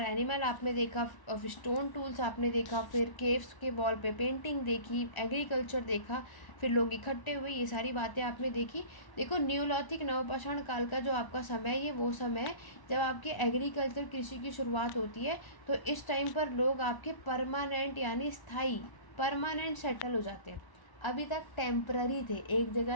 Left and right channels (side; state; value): right; late; 1.0 ms